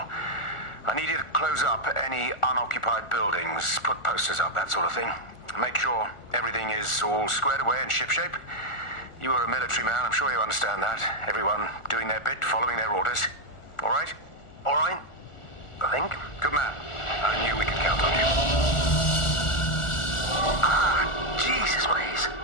I need you to close up any unoccupied buildings, put posters up, that sort of thing. Make sure everything is all squared away and shipshape. You are a military man, I'm sure you understand that. Everyone doing their bit, following their orders. All right? All right. I think. Good man. I knew we could count on you. Ah, Jesus, Maze.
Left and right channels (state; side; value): late; right; 1.4 ms